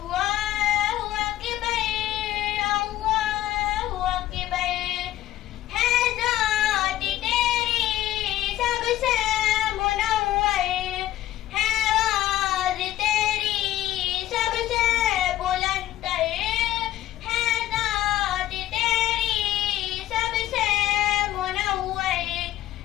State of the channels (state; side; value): quieter; right; 13.9 dB